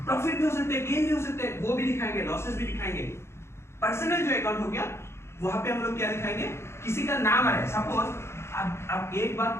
भी हो सकते हैं, गेन भी हो सकते हैं, वो भी दिखाएंगे, लॉसेस भी दिखाएंगे। पर्सनल जो अकाउंट हो गया वहां पे हम लोग क्या दिखाएंगे, किसी का नाम है, सपोज अब एक बात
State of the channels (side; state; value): right; late; 0.13 ms